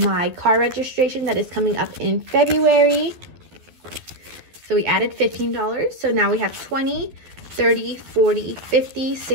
car registration that is coming up in February. So we added $15. So now we have 20, 30, 40, 50,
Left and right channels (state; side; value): late; left; 12 ms